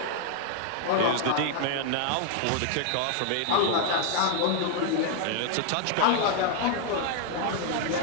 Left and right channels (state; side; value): different; both; correlation 0.00